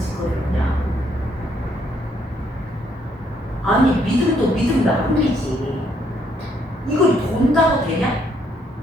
그냥. 아니, 믿음도 믿음 나름이지. 이걸 돈다고 되냐?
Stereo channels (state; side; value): normal; both; correlation 0.70